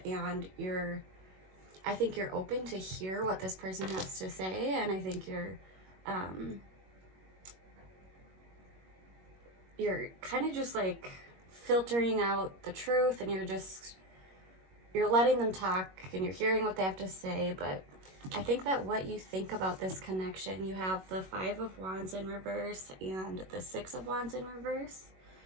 and I think you're open to hear what this person has to say, and I think you're kind of just like filtering out the truth, and you're letting them talk and you're hearing what they have to say. But I think that what you think about this connection, you have the 5 of Wands in reverse and the 6 of Wands in reverse.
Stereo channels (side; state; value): left; late; 21 ms